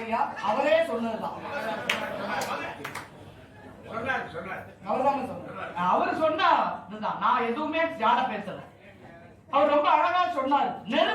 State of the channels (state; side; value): identical; both; correlation 1.00